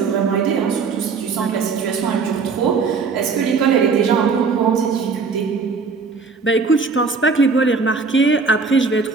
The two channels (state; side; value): quieter; left; 4.8 dB